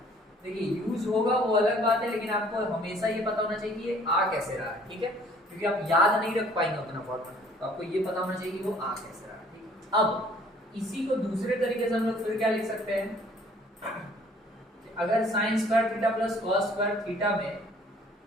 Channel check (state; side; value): normal; both; correlation 0.56